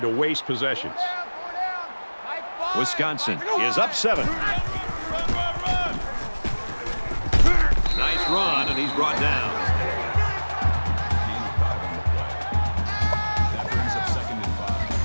to waste possessions. Wisconsin is up 7. Nice run, and he's brought down. Gain of 5 on the play. That brings up 2nd and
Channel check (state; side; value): inverted; both; correlation -1.00